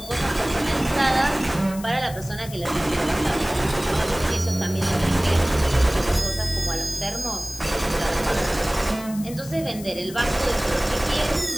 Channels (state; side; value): noise; left; hiss, 15 dB below the sound